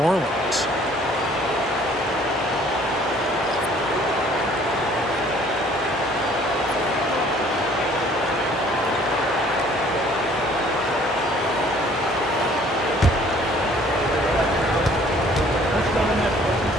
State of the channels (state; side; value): normal; both; correlation 0.56